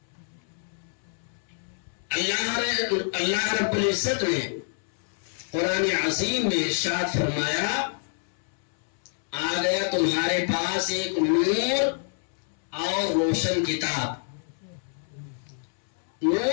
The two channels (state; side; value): silent; right; 60 dB below the other